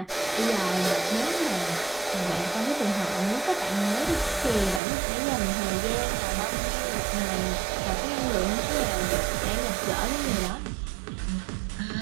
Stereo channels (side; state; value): left; drops out; at 4.8 s